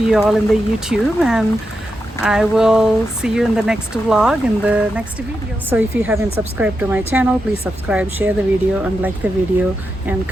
you all in the YouTube, and I will see you in the next vlog, in the next video. So if you haven't subscribed to my channel, please subscribe, share the video, and like the video, and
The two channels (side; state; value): both; normal; correlation 0.87